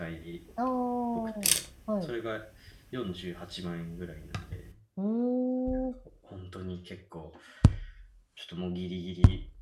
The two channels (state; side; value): identical; both; correlation 1.00